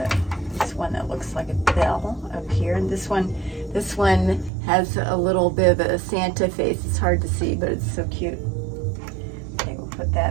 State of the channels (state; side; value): drops out; left; at 4.5 s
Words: this one that looks like a bell up here, and this one has a little bit of a Santa face. It's hard to see, but it's so cute. Okay, we'll put